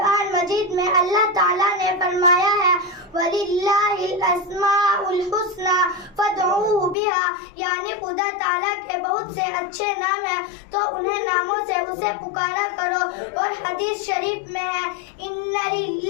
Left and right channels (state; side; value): drops out; right; at 7.0 s